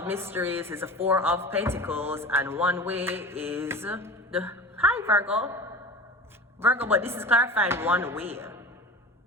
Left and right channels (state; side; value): normal; both; correlation 0.35